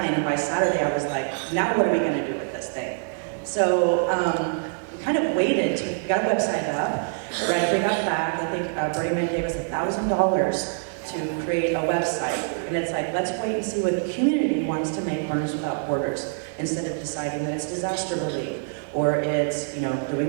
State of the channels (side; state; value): left; silent; digital silence